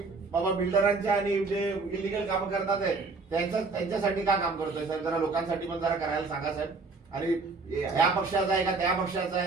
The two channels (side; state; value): left; quieter; 4.0 dB